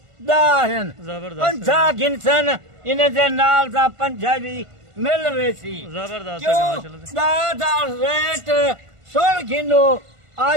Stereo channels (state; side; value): late; left; 1.5 ms